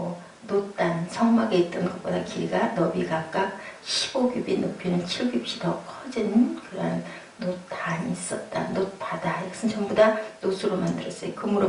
놋단, 성막에 있던 것보다 길이가 너비 각각 15규빗, 높이는 7규빗이 더 커진 그런 놋단이 있었다. 놋바다. 이것은 전부 다 놋으로 만들었어요.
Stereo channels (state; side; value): identical; both; correlation 1.00